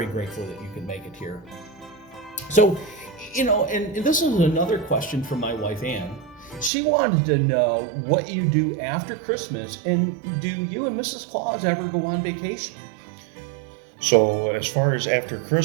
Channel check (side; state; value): left; drops out; at 6.7 s